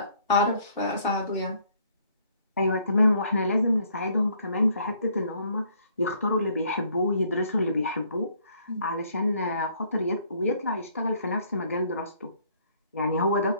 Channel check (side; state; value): both; inverted; correlation -0.64